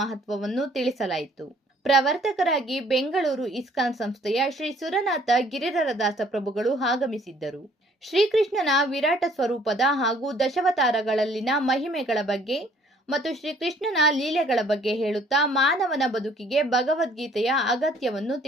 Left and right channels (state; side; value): normal; both; correlation 0.60